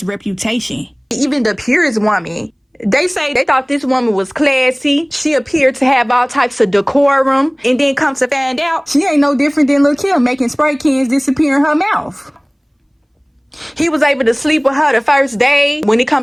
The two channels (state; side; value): identical; both; correlation 1.00